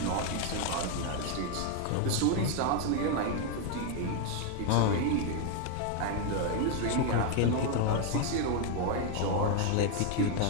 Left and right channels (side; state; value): both; different; correlation 0.01